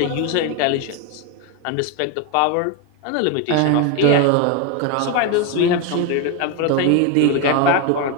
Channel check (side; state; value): both; different; correlation 0.02